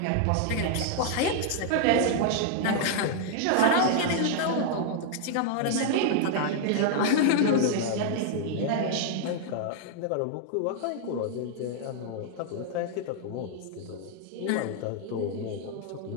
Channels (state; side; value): different; both; correlation 0.00